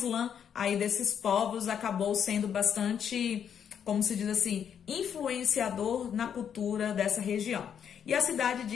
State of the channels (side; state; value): right; quieter; 8.3 dB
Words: aí desses povos acabou sendo bastante, como se diz assim, influenciador na cultura dessa região. E a cidade